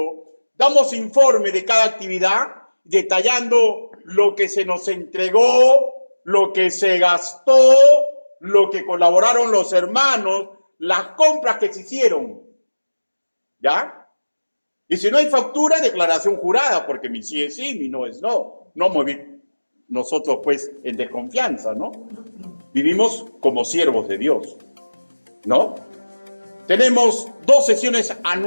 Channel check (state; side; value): inverted; both; correlation -1.00